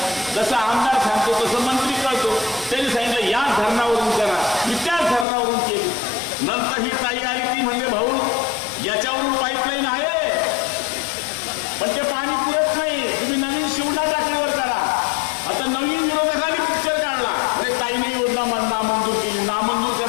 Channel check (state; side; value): drops out; right; at 5.2 s